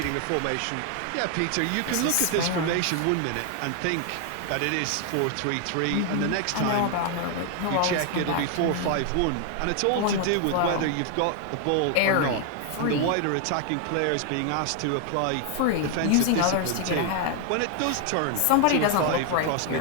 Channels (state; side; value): different; both; correlation 0.00